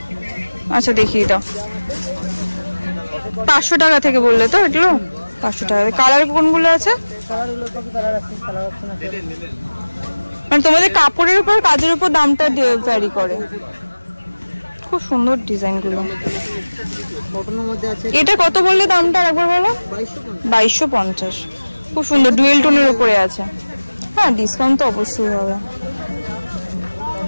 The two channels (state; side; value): inverted; both; correlation -1.00